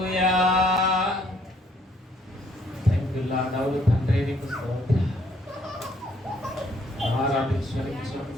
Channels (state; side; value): normal; both; correlation 0.66